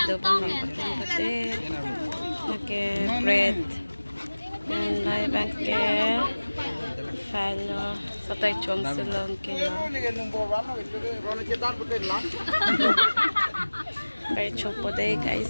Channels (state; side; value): inverted; both; correlation -1.00